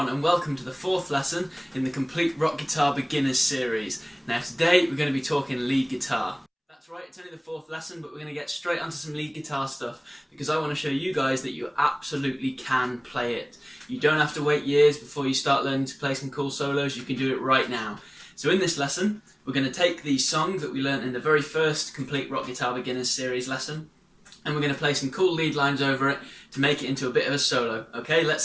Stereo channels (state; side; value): identical; both; correlation 1.00